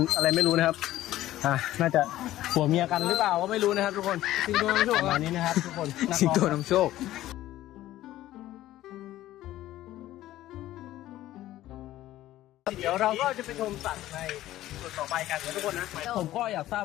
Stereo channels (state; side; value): quieter; right; 14.6 dB